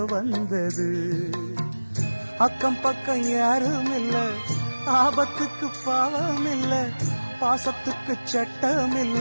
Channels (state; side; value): inverted; both; correlation -1.00